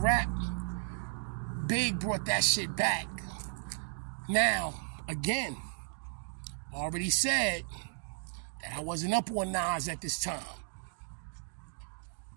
rap, Big brought that shit back. Now, again, already said that I wasn't up on Nas at this time.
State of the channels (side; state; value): left; silent; digital silence